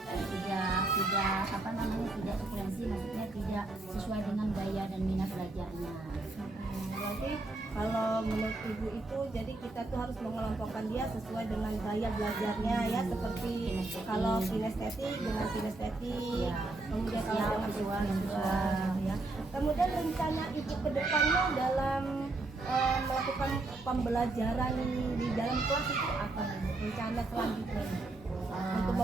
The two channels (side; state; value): left; quieter; 3.0 dB